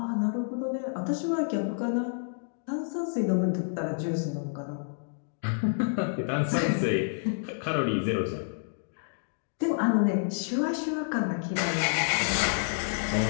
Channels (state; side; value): silent; right; digital silence